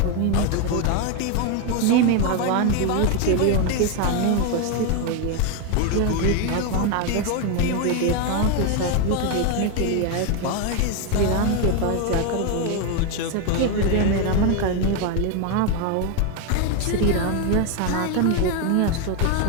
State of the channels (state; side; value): different; both; correlation 0.01